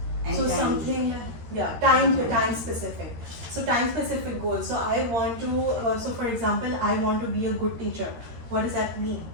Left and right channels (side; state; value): left; late; 13 ms